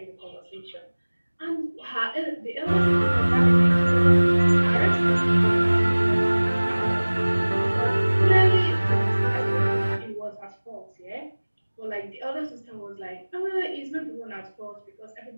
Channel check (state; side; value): inverted; both; correlation -1.00